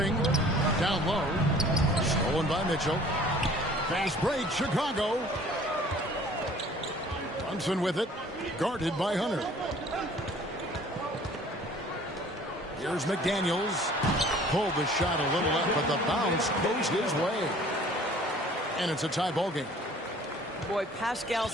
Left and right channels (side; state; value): both; normal; correlation 0.52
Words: Down low. Stolen by Mitchell. Fast break, Chicago. Brunson with it. Guarded by Hunter. Here's McDaniels. Pulled the shot a little up, but the bounce goes his way. And it's a tie ball game. Boy, Pascal